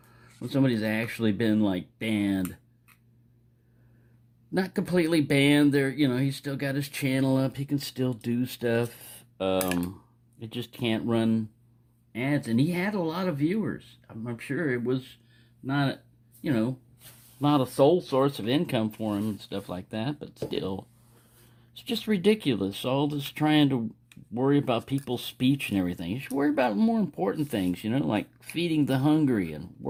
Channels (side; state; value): both; identical; correlation 1.00